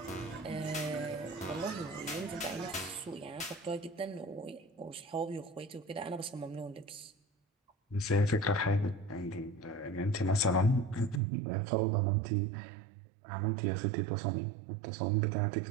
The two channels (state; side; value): drops out; left; at 11.2 s